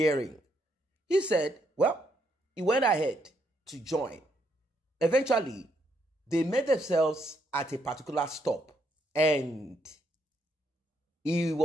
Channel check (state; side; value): normal; both; correlation 0.75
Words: He said, well, he went ahead to join. Eventually, they met themselves at a particular stop and he